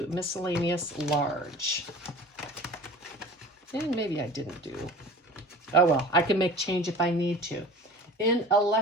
miscellaneous large. And maybe I didn't do. Oh well, I can make change if I need to. In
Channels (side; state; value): both; normal; correlation 0.41